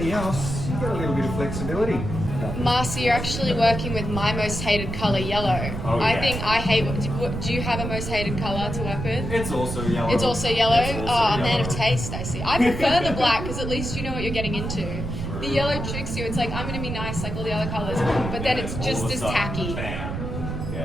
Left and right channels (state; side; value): noise; right; rumble, 5 dB below the sound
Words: else, you get a little bit of flexibility. Marcy, you're actually working with my most hated colour, yellow. Oh, yeah. I think I hate. Do you have a most hated colour to work with? It's also yellow. It's also yellow. It's also A man of yellow. taste, I see. I prefer the black because at least you know what you're getting into. The yellow tricks you. It's like I'm going to be nice like all the other colours, but then it's just All of a as sudden, tacky. bam.